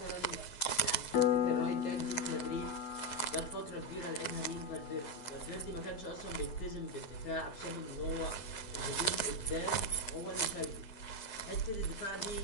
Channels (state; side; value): late; right; 9.5 ms